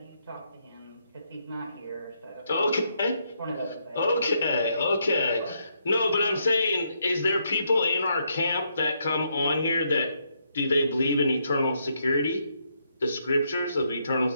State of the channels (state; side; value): inverted; both; correlation -0.76